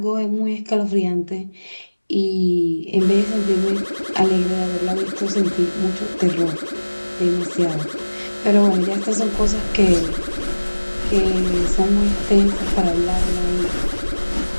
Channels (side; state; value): both; inverted; correlation -1.00